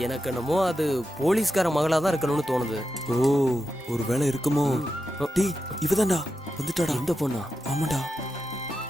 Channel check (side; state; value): both; normal; correlation 0.89